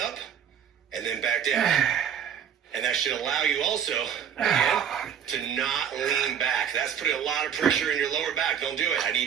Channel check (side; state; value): left; quieter; 8.5 dB